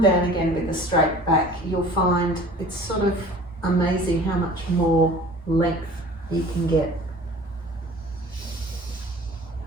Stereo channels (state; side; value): normal; both; correlation 0.45